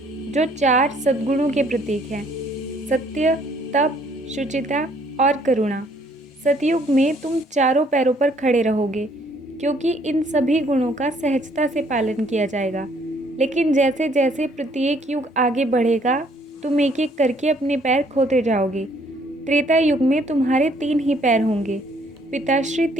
जो 4 सद्गुणों के प्रतीक हैं: सत्य, तप, शुचिता और करुणा। सतयुग में तुम चारों पैरों पर खड़े रहोगे, क्योंकि इन सभी गुणों का सहजता से पालन किया जाएगा। लेकिन जैसे जैसे प्रत्येक युग आगे बढ़ेगा, तुम एक एक करके अपने पैर खोते जाओगे। त्रेता युग में तुम्हारे 3 ही पैर होंगे। पिताश्री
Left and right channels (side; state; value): both; normal; correlation 0.64